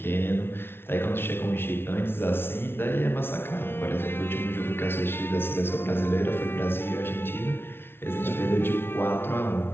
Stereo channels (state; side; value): late; right; 0.11 ms